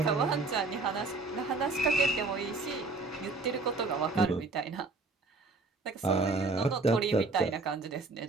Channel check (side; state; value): left; quieter; 3.6 dB